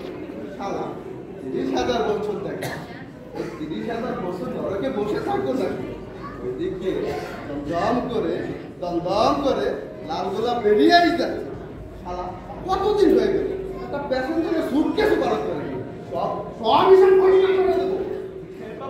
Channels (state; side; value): identical; both; correlation 1.00